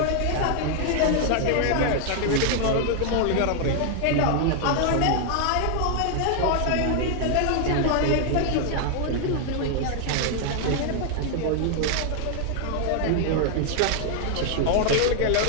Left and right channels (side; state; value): both; different; correlation 0.00